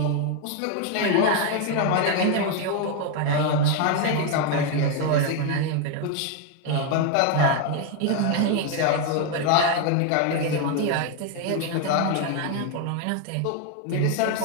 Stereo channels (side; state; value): both; different; correlation 0.01